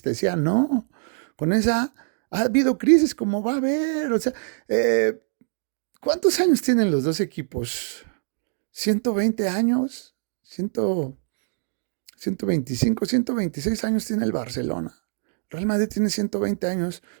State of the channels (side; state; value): left; silent; digital silence